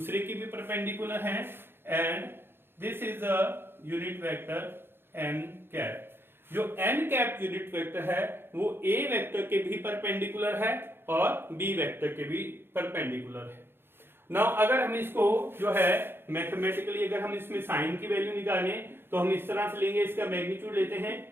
के भी परपेंडिकुलर हैं and this is a unit vector n cap. जो n cap यूनिट वेक्टर है वो a वेक्टर के भी परपेंडिकुलर है और b वेक्टर के भी परपेंडिकुलर है। नाउ अगर हम इसको जो है मैथमेटिकली अगर हम इसमें साइन की वैल्यू निकालें तो हम इस तरह से लेंगे, इसका मैग्नीट्यूड लेते हैं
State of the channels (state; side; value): late; left; 0.11 ms